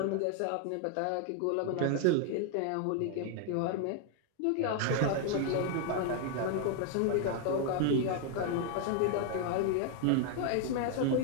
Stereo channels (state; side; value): different; both; correlation 0.00